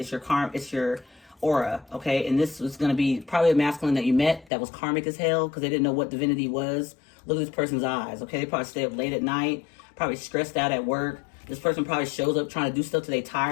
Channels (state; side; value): drops out; right; at 4.5 s